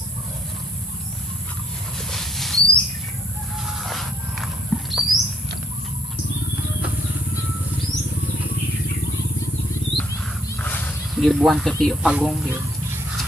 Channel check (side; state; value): both; normal; correlation 0.63